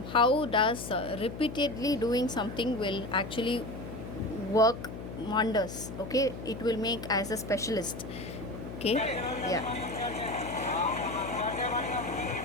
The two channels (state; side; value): noise; left; hum, 10 dB below the sound